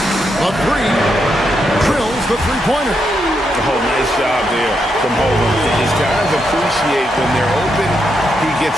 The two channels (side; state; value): both; normal; correlation 0.81